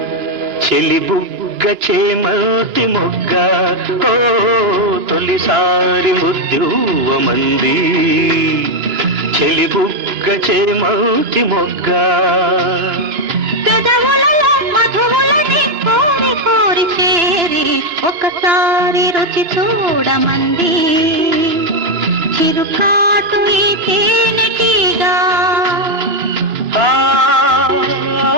చెలిబుగ్గ చేమల్తి మొగ్గ ఓ తొలిసారి ముద్దివ్వమంది చెలిబుగ్గ చేమల్తి మొగ్గ పెదవులలో మధువులని కోరి కోరి చేరి ఒకసారి రుచి చూడమంది చిరుకాటు ఈ తేనెటీగా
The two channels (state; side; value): late; left; 2.9 ms